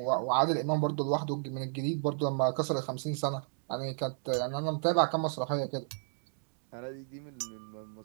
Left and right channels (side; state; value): left; silent; digital silence